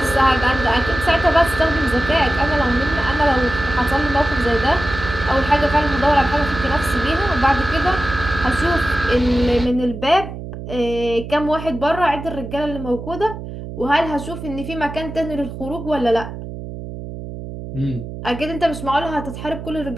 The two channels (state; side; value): noise; right; hum, 10 dB below the sound